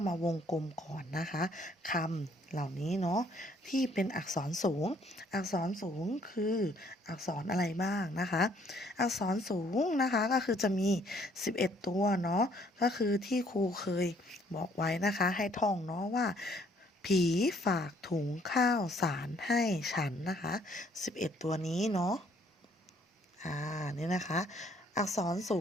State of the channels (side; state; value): both; normal; correlation 0.64